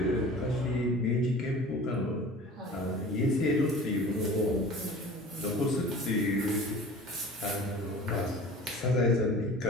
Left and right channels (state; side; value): normal; both; correlation 0.41